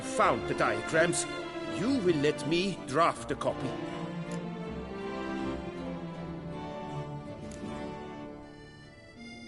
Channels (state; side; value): identical; both; correlation 1.00